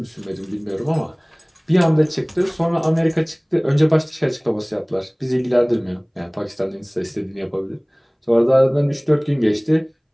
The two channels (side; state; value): both; identical; correlation 1.00